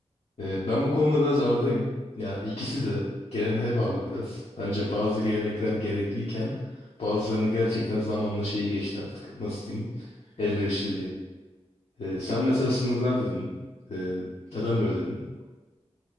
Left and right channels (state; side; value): normal; both; correlation 0.77